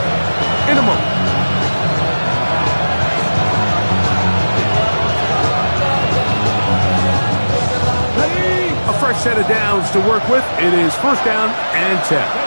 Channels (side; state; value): both; inverted; correlation -1.00